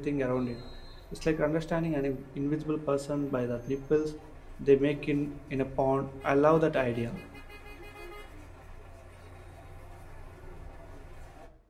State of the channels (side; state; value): both; identical; correlation 1.00